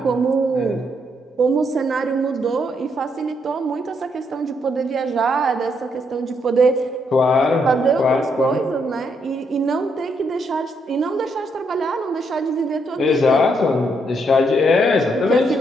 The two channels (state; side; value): normal; both; correlation 0.75